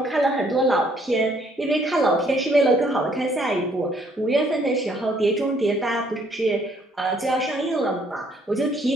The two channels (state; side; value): normal; both; correlation 0.65